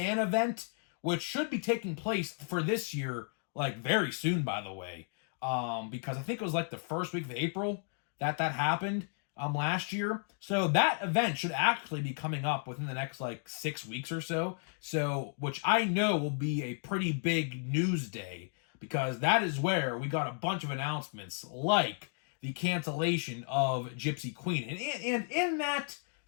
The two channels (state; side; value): silent; right; 55 dB below the other